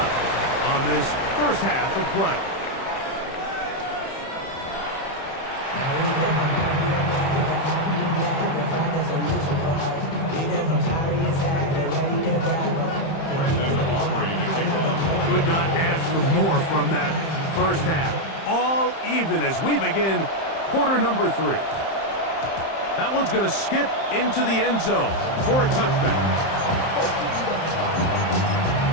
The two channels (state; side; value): late; right; 31 ms